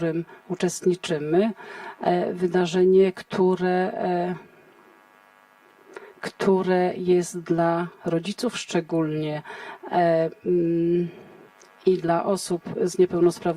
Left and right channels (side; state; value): both; identical; correlation 1.00